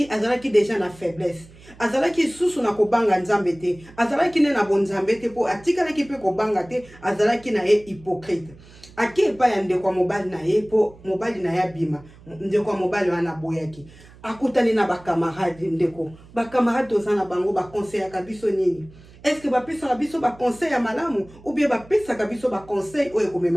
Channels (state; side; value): noise; right; hum, 23 dB below the sound